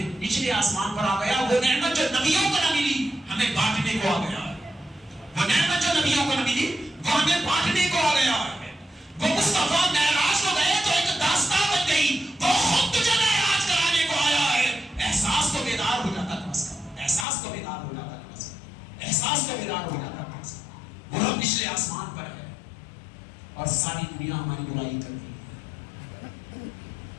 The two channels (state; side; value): drops out; right; at 17.2 s